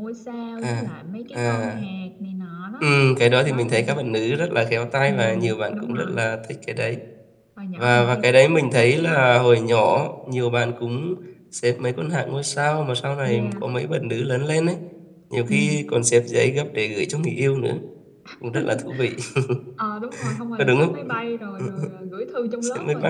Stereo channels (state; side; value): identical; both; correlation 1.00